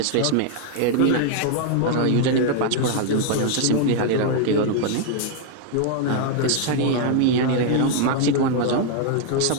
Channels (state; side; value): different; both; correlation 0.00